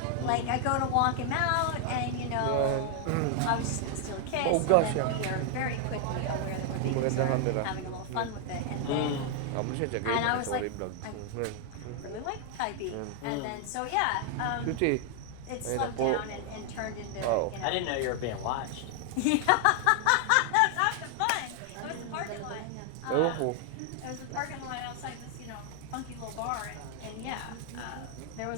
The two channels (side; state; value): both; different; correlation 0.00